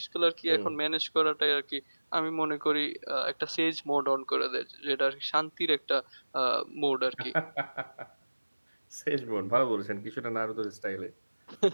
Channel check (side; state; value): both; inverted; correlation -1.00